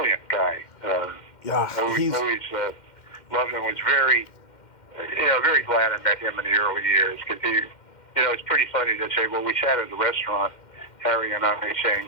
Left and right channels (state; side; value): late; right; 2.1 ms